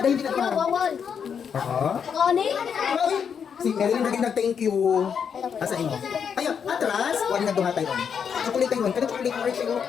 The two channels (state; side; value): quieter; right; 7.2 dB